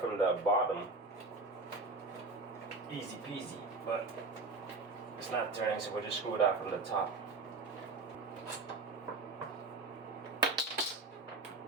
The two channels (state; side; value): quieter; left; 3.5 dB